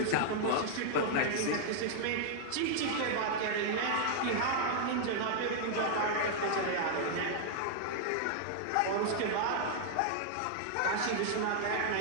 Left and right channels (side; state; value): both; different; correlation -0.01